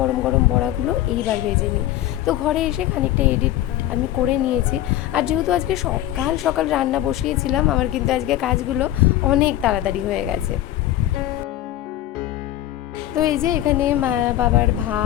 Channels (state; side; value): quieter; right; 13.5 dB